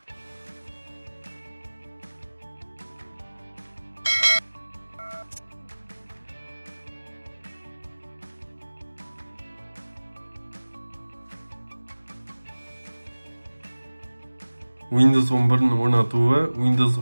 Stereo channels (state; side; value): inverted; both; correlation -1.00